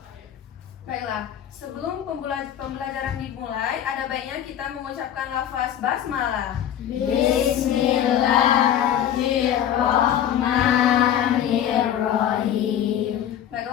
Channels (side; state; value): right; quieter; 10.3 dB